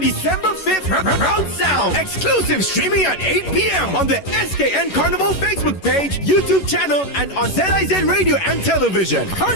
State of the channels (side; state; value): right; late; 11 ms